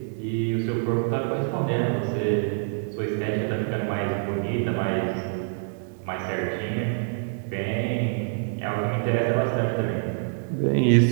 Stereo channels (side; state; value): left; silent; digital silence